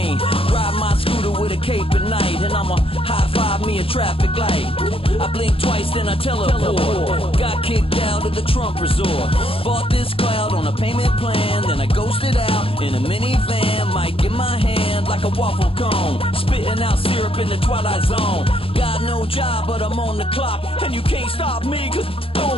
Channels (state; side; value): late; right; 0.27 ms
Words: Ride my scooter with a cape at night, and I'ma high five me a traffic light. I blink twice, then I teleport. Got kicked out of the Trump resort. Bought this cloud on a payment plan, then I ghosted out in a minivan. Might get my hand like a waffle cone, spitting out syrup in the twilight zone. Got no job, but I'm on the clock, and you can't stop me, cause